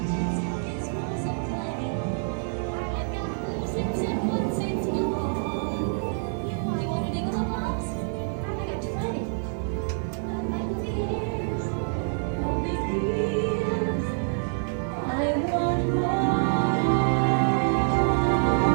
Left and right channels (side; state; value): left; silent; 60 dB below the other